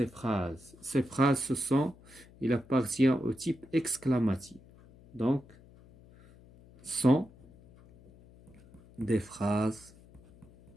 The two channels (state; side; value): noise; left; hum, 24 dB below the sound